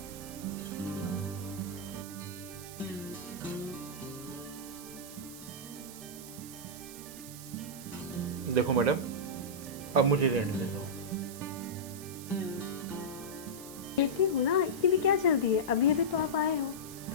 देखो मैडम, अब मुझे रेंट दे दो। देती हूँ ना, इतनी भी क्या जल्दी है? अभी अभी तो आप आए हो,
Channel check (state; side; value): noise; right; hiss, 13 dB below the sound